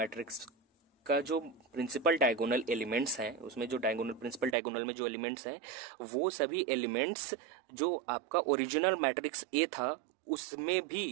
का जो प्रिंसिपल डायगोनल एलिमेंट्स हैं, उसमें जो प्रिंसिपल डायगोनल में जो एलिमेंट्स हैं वो सभी एलिमेंट्स जो आपका ओरिजिनल मैट्रिक्स ए था उसमें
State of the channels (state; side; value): drops out; left; at 4.5 s